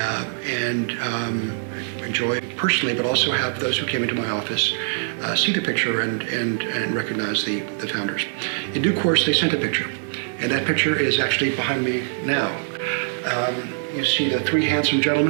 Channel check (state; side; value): silent; left; digital silence